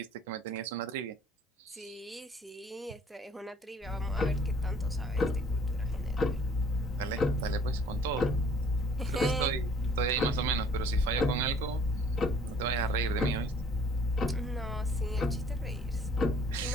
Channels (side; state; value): both; normal; correlation 0.56